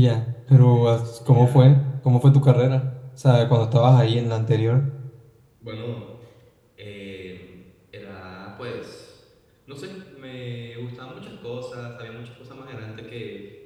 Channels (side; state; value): both; identical; correlation 1.00